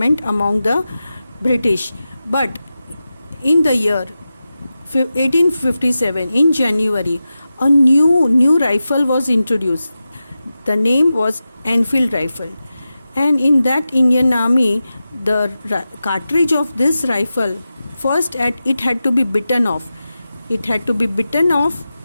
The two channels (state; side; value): inverted; both; correlation -0.93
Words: among the British. But in the year 1857, in January, a new rifle was introduced. The name was Enfield rifle, and in that Indian Army, the cartridge of this rifle, first it had to be bitten off. It had to be bitten off